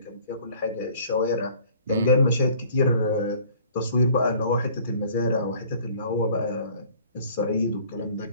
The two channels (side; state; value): both; inverted; correlation -0.53